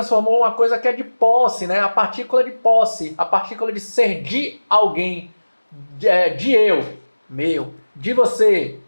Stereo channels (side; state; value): both; inverted; correlation -1.00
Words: uma coisa que é de posse, né? A partícula de posse, a partícula de ser de alguém, de eu, meu, de você,